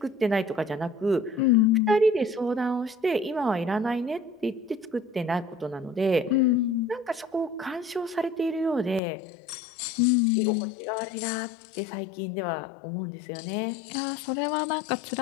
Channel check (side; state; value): right; drops out; at 9.0 s